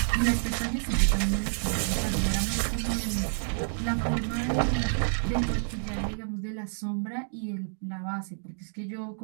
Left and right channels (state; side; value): silent; left; digital silence